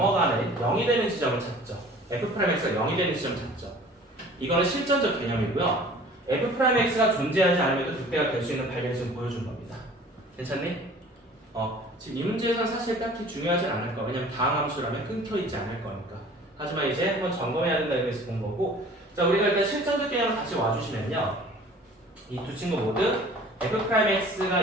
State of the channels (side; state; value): both; normal; correlation 0.47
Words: 0이 되는 지점을 찾죠. f'x가 0이 되는 지점을 찾죠. 이거는 실전적 개념이고요. f'x가 존재하지 않으면 극대가 될 수 있는 발견을 지금 보여준 겁니다. 괜찮니? 지금 이 문제에서는 사실 딱히 중요하진 않을 거야. 왜냐면 다항함수라면 끊겨있지 않을 거니까. 하지만 이제 한번 점검해야 된다는 의미에서 본 거고, 자, 우리가 일단 실전적 개념을 다시 와주시면요, 이 두 친구 모두 f'x가